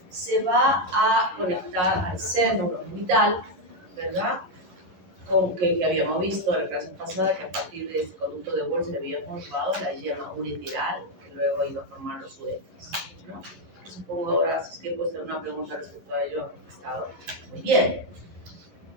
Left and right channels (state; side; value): late; left; 11 ms